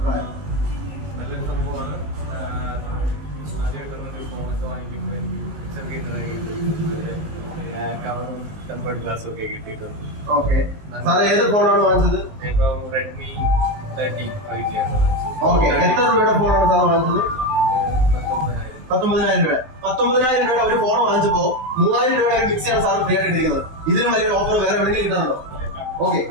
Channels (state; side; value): late; left; 19 ms